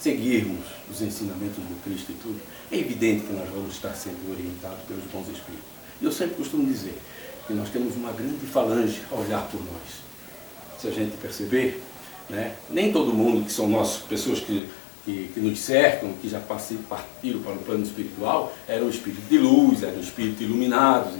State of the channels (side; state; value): right; drops out; at 14.6 s